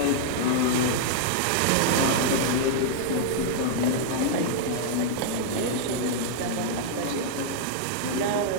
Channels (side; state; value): both; different; correlation -0.01